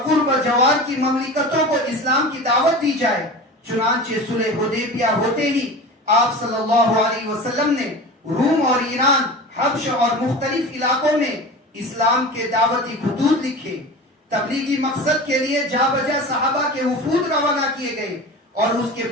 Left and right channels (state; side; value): normal; both; correlation 0.33